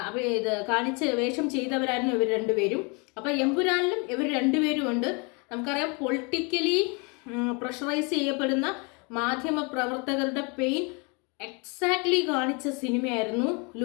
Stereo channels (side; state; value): right; quieter; 31.7 dB